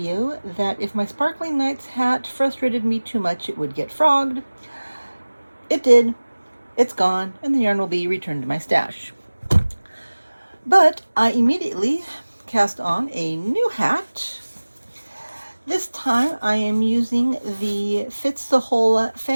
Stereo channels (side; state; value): both; inverted; correlation -1.00